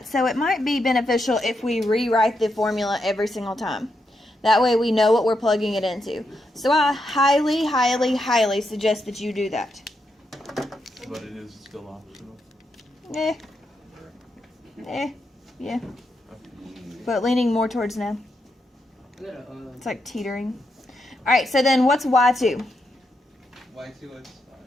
So it might be beneficial if we rewrite the formula every single time. That way we know what we're plugging it into. So I highly, highly, highly suggest that you do that. But it is still optional. Yeah, yeah. But leaning more towards no. It's like teetering. All right, so then what's y2? Y2 is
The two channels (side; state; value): both; normal; correlation 0.82